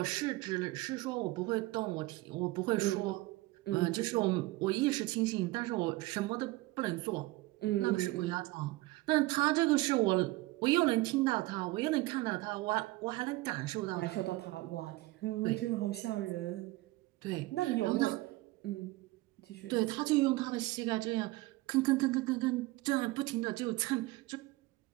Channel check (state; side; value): quieter; left; 20.2 dB